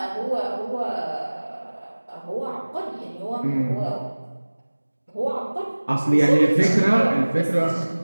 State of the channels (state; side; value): inverted; both; correlation -1.00